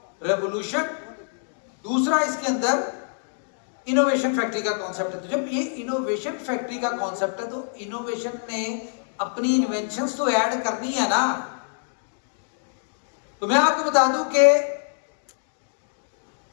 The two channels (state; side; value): silent; right; digital silence